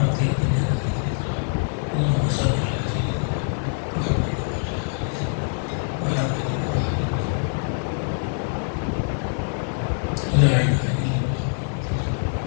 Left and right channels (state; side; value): silent; right; digital silence